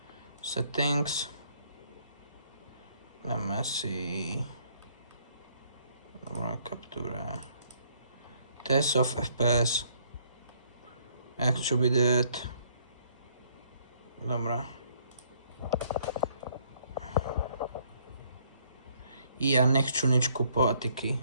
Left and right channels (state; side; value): inverted; both; correlation -0.66